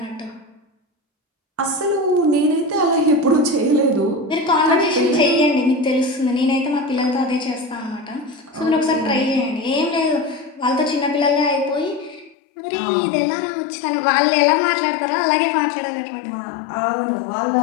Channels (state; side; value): drops out; right; at 12.4 s